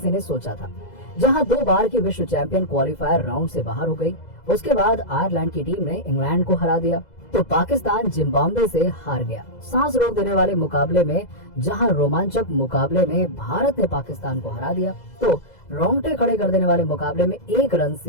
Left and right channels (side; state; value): right; late; 2.0 ms